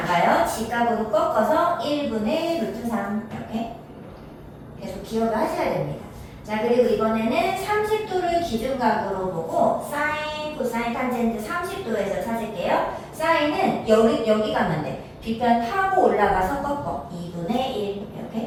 가요. 직각으로 꺾어서 1분의 루트 3 이렇게. 계속 기억을 하셔야 됩니다. 자, 그리고 이번에는 30도를 기준각으로 보고 사인, 코사인, 탄젠트 30도에서 찾을게요. 사인은 여기 가면 돼. 빗변 타고 올라가서 꺾어. 2분의 1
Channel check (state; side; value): identical; both; correlation 1.00